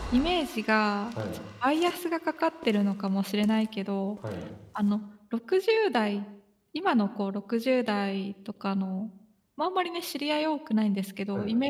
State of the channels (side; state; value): both; identical; correlation 1.00